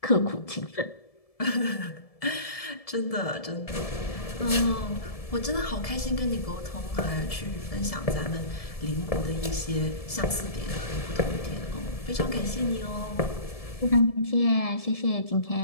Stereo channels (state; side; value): late; right; 1.7 ms